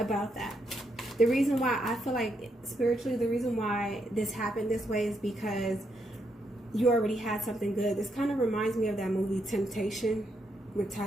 that. The reason why I feel like spiritually, the reason why this happened this way is because you already had something good. This kind of reminds me of that movie Temptation with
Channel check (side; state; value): both; normal; correlation 0.79